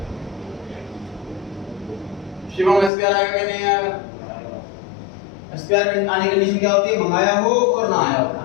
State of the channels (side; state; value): right; drops out; at 2.9 s